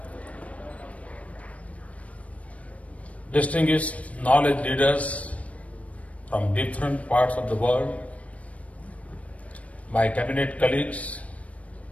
Distinguished knowledge leaders from different parts of the world, my cabinet colleagues,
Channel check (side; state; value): right; late; 0.066 ms